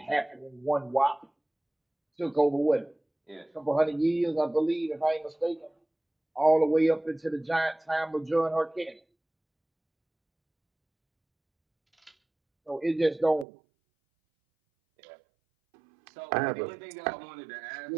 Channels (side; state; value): left; drops out; at 13.5 s